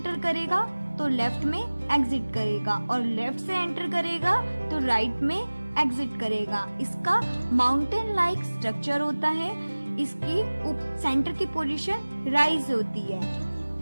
करेगा तो left में एग्जिट करेगा और लेफ्ट से एंटर करेगा तो राइट में एग्जिट करेगा. इसका माउंटेन लाइक स्ट्रक्चर होता है. इसकी सेंटर की पोजीशन राइज होती है.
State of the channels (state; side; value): inverted; both; correlation -1.00